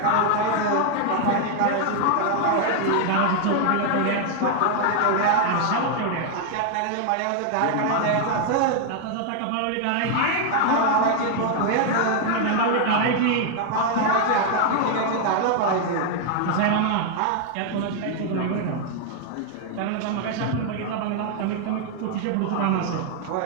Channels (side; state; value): both; different; correlation 0.00